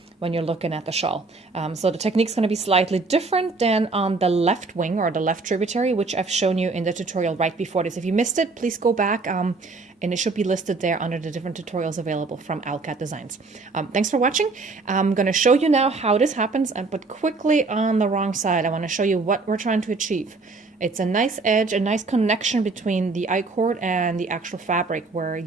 when you're looking at the shawl. So the technique's going to be slightly different than on the left wing or the left tributary, which I've shown you in the tutorial right before this. If you missed it, please go back and it should be listed there under the different tutorials available from Alcat Designs. Thanks for watching. I'm going to show you now how this happens, but quickly on the wrong side, I want to show you what we're trying to achieve. It's a nice edge, a nice connection between the I-cord and the actual fabric where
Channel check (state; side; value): quieter; left; 3.8 dB